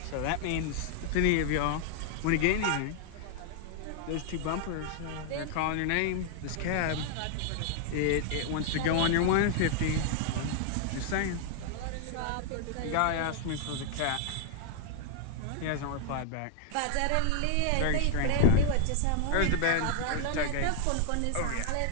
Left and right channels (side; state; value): both; different; correlation 0.00